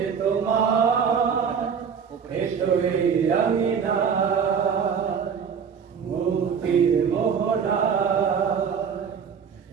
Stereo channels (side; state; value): left; quieter; 6.8 dB